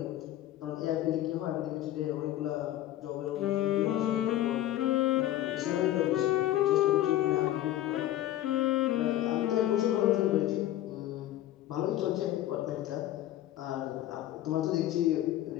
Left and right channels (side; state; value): right; quieter; 13.6 dB